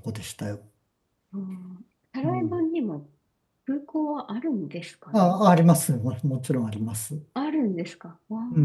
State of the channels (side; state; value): both; identical; correlation 1.00